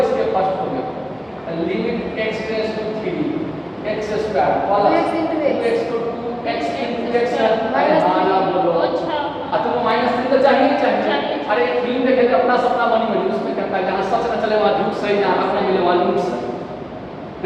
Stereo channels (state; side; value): identical; both; correlation 1.00